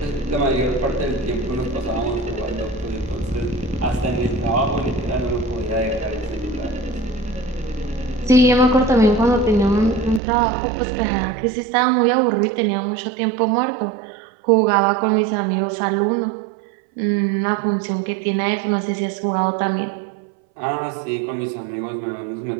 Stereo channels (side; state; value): left; drops out; at 10.2 s